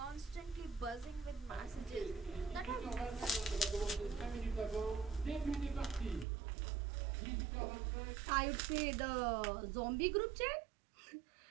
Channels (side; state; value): left; drops out; at 6.2 s